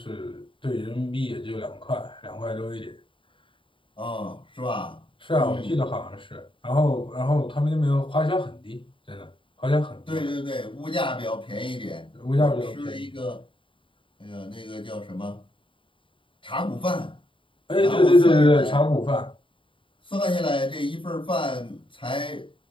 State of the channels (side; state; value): right; late; 0.25 ms